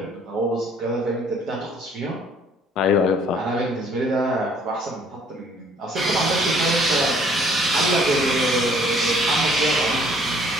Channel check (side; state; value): both; normal; correlation 0.59